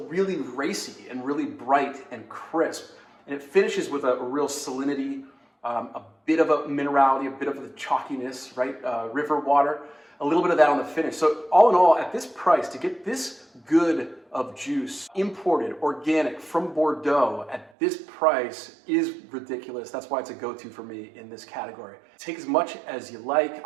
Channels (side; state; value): left; drops out; at 17.7 s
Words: really racy and really bright and crisp. And it finishes with a real salinity, a bit of a minerality, a bit of the chalkiness, right? River water, a little bit of that on the finish. So all in all, at this price, to get this good of juice, imported, organic, from Bordeaux, at this price is ridiculous. That's why it's a go-to for me in this category. Take as much as you like.